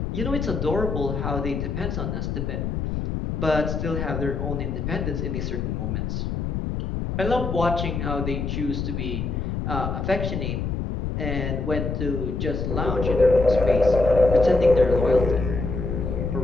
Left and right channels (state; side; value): noise; left; rumble, 2 dB below the sound